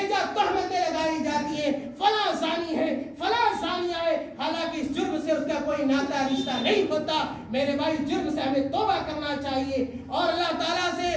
جا تہمتیں لگائی جاتی ہیں، فلاں زانی ہے، فلاں زانیہ ہے، حالانکہ اس جرم سے اس کا کوئی ناتا رشتہ نہیں ہوتا. میرے بھائی اس جرم سے ہمیں توبہ کرنا چاہیے اور اللہ تعالیٰ سے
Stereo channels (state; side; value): identical; both; correlation 1.00